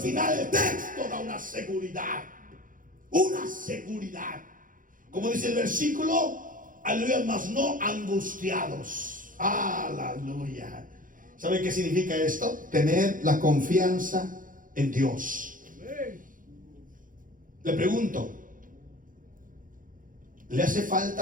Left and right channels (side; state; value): left; late; 0.39 ms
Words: el texto da una seguridad. Una seguridad. Como dice el versículo, aleluya, mas no angustiados. Aleluya. ¿Sabe qué significa esto? Tener la confianza en Dios. Le pregunto, ¿le hace